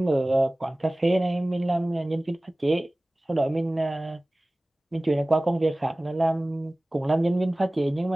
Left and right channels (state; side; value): normal; both; correlation 0.98